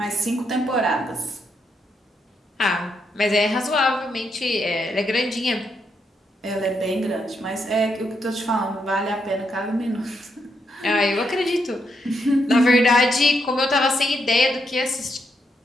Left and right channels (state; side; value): normal; both; correlation 0.79